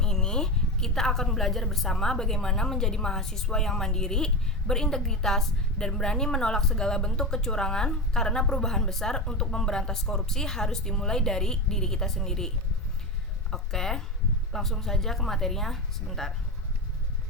ini, kita akan belajar bersama bagaimana menjadi mahasiswa yang mandiri, berintegritas, dan berani menolak segala bentuk kecurangan karena perubahan besar untuk memberantas korupsi harus dimulai dari diri kita sendiri. Oke, langsung saja ke materinya sebentar.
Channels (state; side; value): normal; both; correlation 0.19